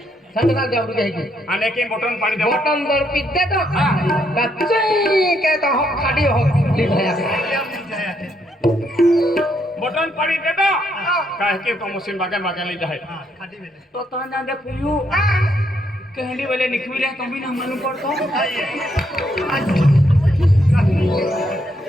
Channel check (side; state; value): both; normal; correlation 0.75